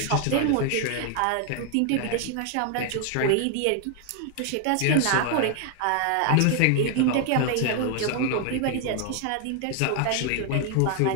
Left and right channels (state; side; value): different; both; correlation 0.00